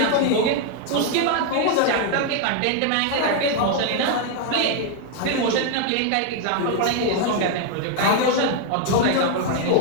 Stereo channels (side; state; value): both; different; correlation 0.00